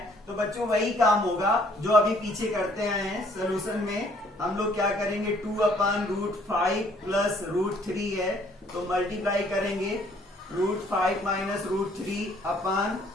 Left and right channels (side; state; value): both; normal; correlation 0.62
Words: तो बच्चों वही काम होगा जो अभी पीछे करते आए हैं। सोल्यूशन में हम लोग क्या करेंगे, 2 अपान √5 प्लस √3 है तो मल्टीप्लाई करेंगे √5 माइनस √3 अपान